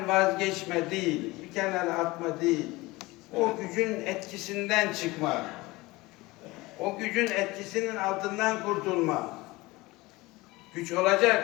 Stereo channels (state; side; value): quieter; right; 21.2 dB